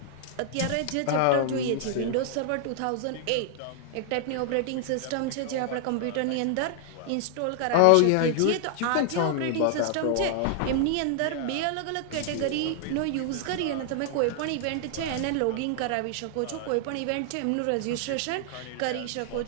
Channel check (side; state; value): both; different; correlation 0.00